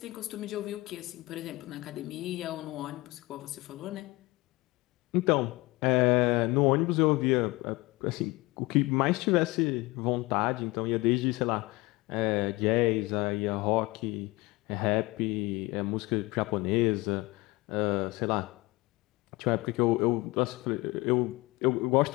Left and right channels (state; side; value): quieter; right; 22.4 dB